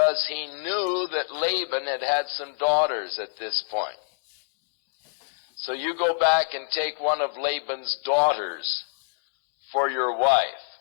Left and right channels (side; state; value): right; silent; digital silence